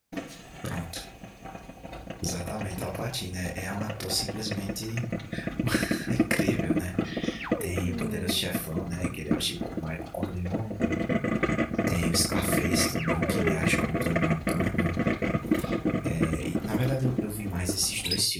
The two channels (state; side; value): identical; both; correlation 1.00